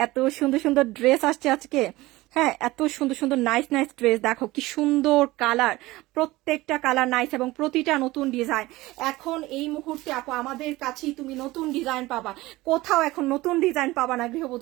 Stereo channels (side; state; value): left; quieter; 19.2 dB